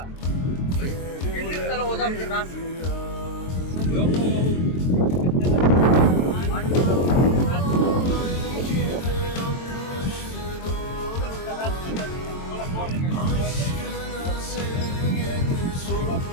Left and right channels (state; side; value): late; right; 23 ms